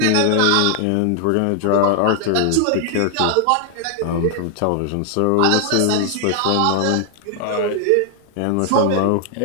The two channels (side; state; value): both; different; correlation 0.00